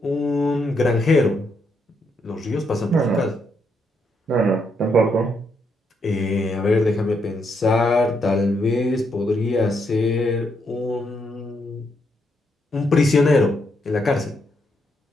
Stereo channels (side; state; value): both; normal; correlation 0.77